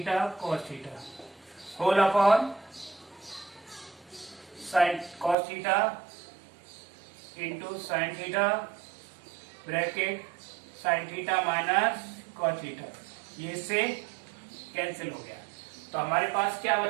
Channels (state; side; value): drops out; left; at 5.4 s